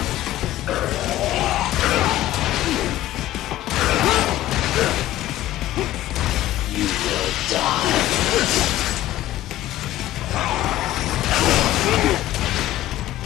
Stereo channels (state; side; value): quieter; right; 14.6 dB